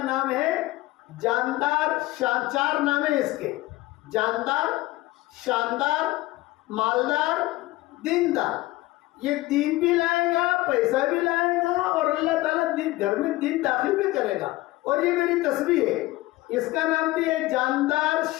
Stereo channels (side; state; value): right; quieter; 18.8 dB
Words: نام ہے جاندار. 4 نام ہے اس کے, جاندار, شاندار, مالدار, دیندار. یہ دین بھی لائے گا, پیسہ بھی لائے گا, اور اللہ تعالیٰ گھر میں دین داخل بھی کرے گا. اور یہ میری تسبیح ہے, اس کا نام بھی ہے جاندار,